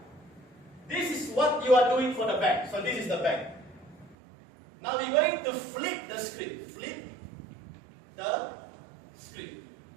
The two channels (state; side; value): drops out; left; at 4.2 s